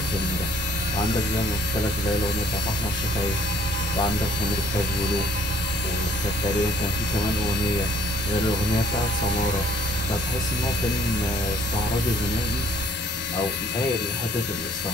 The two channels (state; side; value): normal; both; correlation 0.59